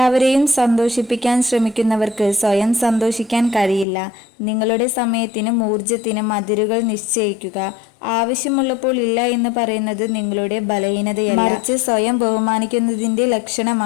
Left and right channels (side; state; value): right; drops out; at 3.9 s